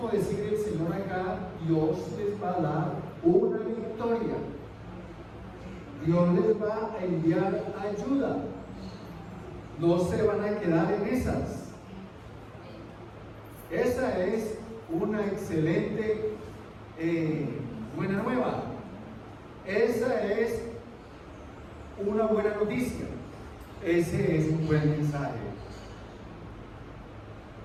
decir el Señor acá: Dios les va a dar una victoria. Dios les va a enviar ayuda. No se van a quedar en esas. Esa es una excelente buena nueva. Esa es una buena noticia. Ese es un buen mensaje.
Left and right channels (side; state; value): both; identical; correlation 1.00